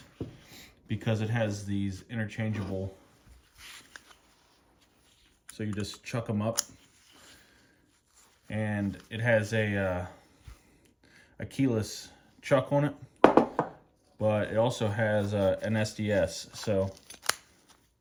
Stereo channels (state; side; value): identical; both; correlation 1.00